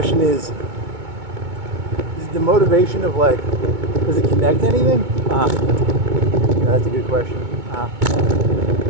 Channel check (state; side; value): late; left; 2.2 ms